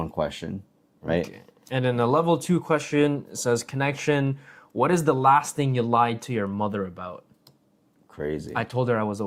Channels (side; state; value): both; identical; correlation 1.00